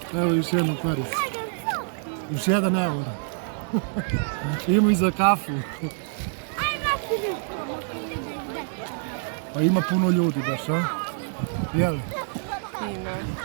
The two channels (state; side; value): silent; left; 61 dB below the other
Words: Evo još jedna parica. Još 1 euro. Ima i za kafu. Pa ima puno ljudi baš, a? Jel? Ima.